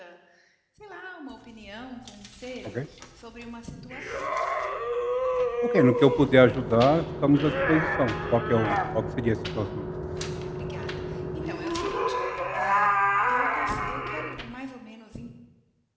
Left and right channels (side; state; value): both; identical; correlation 1.00